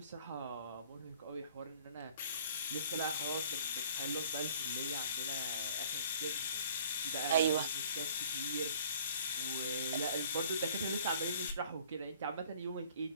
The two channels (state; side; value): inverted; both; correlation -0.52